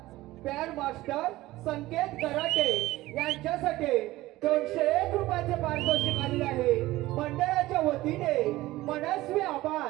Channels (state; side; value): quieter; left; 17.5 dB